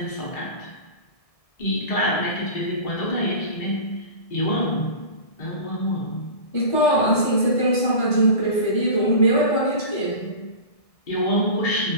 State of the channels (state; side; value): late; right; 1.7 ms